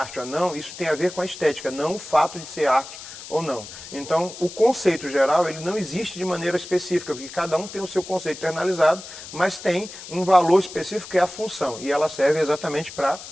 ou não, isso tem a ver com a estética, não o fato de ser arte ou não. Então, o conceito geral, ele não existe de maneira específica, porque cada um tem o seu conceito internalizado, mas tem um valor específico que é a função, e ela serve exatamente para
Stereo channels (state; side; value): noise; left; hiss, 13 dB below the sound